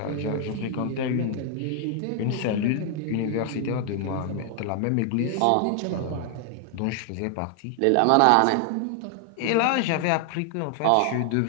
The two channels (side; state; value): both; different; correlation 0.00